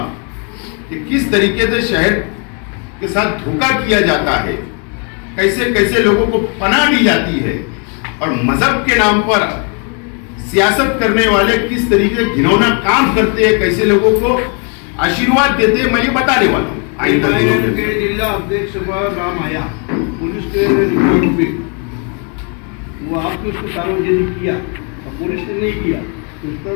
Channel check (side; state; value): right; quieter; 37.4 dB